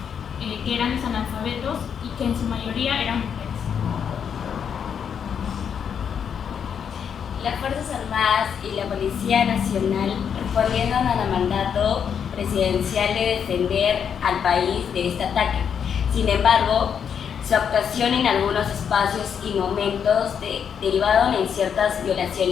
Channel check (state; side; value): quieter; right; 7.6 dB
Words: que eran los analfabetos y que en su mayoría eran mujeres. Las Fuerzas Armadas y la Policía Nacional respondieron al mandato presidencial de defender al país de este ataque. Sin embargo, su actuación en algunos espacios y momentos derivaron en ciertas